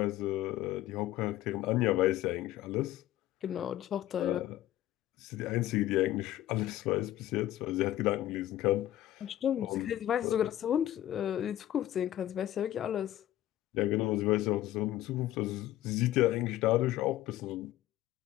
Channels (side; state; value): right; quieter; 13.8 dB